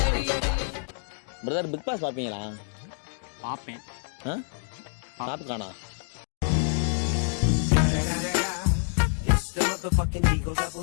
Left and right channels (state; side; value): silent; right; digital silence